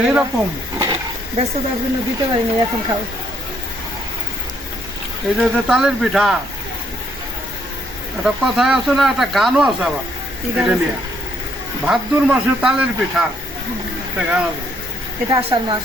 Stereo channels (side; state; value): both; normal; correlation 0.69